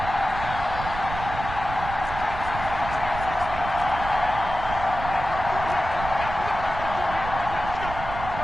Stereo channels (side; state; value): right; noise; rumble, 8 dB below the sound